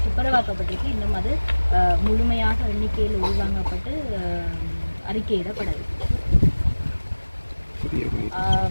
துப்புரவாக்கப்பட்டிருக்கு. இன்னும் அது முழுமையாக எண்ணிக்கையில் உள்வாங்கப்பட்டு அறிக்கையிடப்படவில்லை.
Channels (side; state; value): both; inverted; correlation -1.00